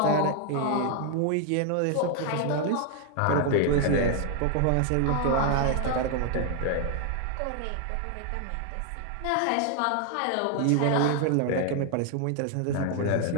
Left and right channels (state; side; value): different; both; correlation 0.00